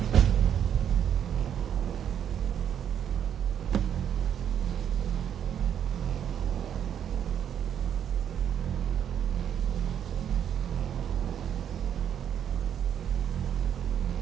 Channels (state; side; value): quieter; left; 9.1 dB